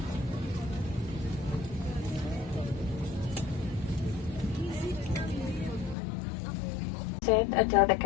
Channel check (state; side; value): drops out; right; at 6.0 s